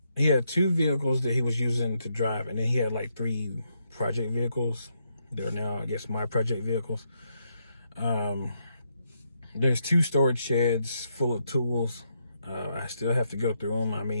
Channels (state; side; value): inverted; both; correlation -0.78